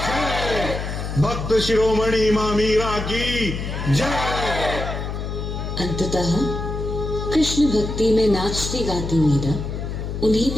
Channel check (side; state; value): left; noise; hum, 5 dB below the sound